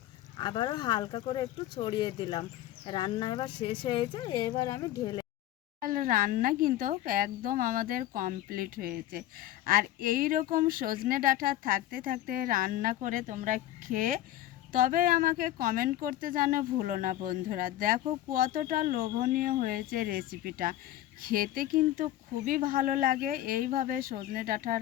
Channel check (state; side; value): quieter; right; 13.8 dB